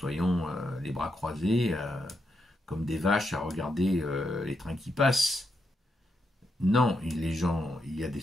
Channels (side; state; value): both; normal; correlation 0.82